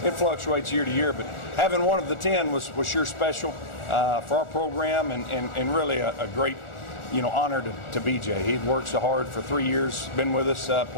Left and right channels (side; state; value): right; late; 1.4 ms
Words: fluctuates year to year, but having one of the 10 was sure special for our program and really a great, honor to BJ. He'd worked so hard for 3 years, been with us